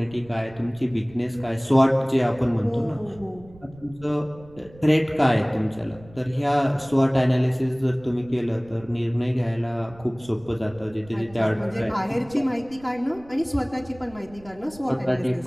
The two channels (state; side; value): noise; right; rumble, 22 dB below the sound